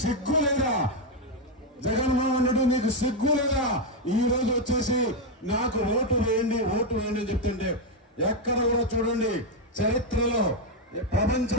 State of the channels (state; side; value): normal; both; correlation 0.04